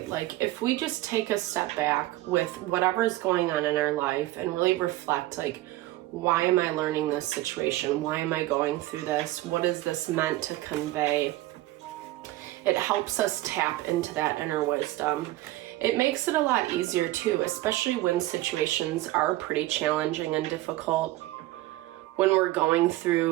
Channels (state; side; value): quieter; left; 17.2 dB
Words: Like if we just take a step back with whatever's going on in our life and really reflect, like, why am I learning this situation? Why am I going through this? What is this meant to convey? It helps us tap into that inner wisdom. It makes it a lot easier too, especially when situations are pretty challenging and difficult. When we're going